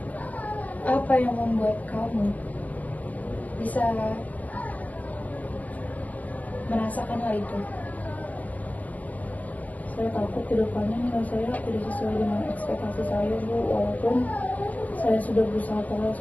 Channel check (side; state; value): right; late; 0.076 ms